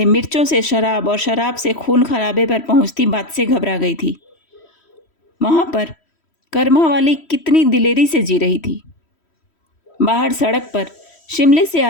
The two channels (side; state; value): right; late; 3.1 ms